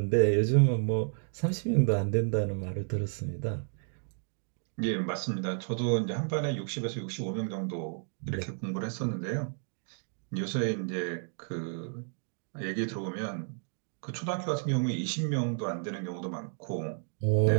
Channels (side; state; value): left; silent; 56 dB below the other